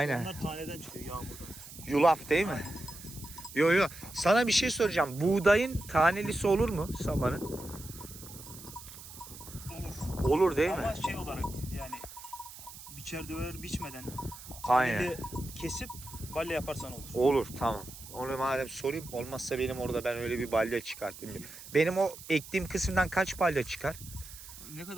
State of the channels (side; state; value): right; noise; hiss, 15 dB below the sound